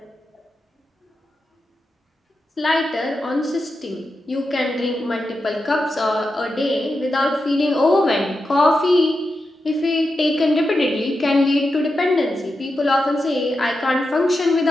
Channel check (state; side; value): normal; both; correlation 0.89